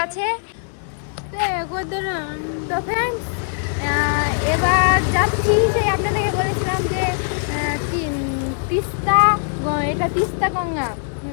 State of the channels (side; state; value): right; silent; 65 dB below the other